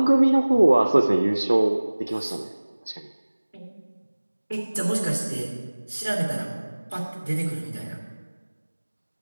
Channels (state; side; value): inverted; both; correlation -1.00